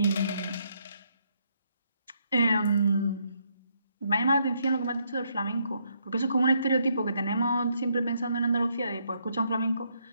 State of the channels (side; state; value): both; inverted; correlation -0.74